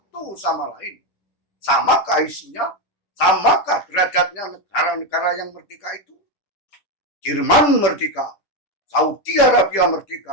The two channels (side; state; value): right; late; 10 ms